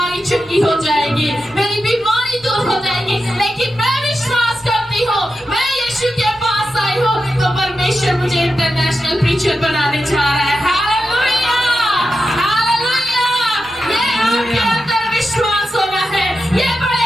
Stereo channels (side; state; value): right; noise; rumble, 30 dB below the sound